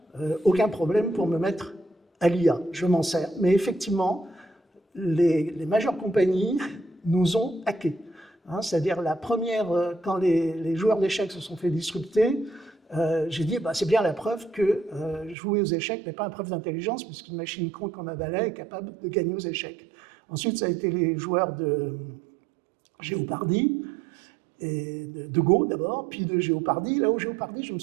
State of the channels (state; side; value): drops out; left; at 15.4 s